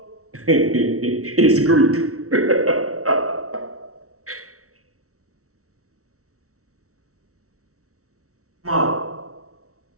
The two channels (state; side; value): late; left; 0.64 ms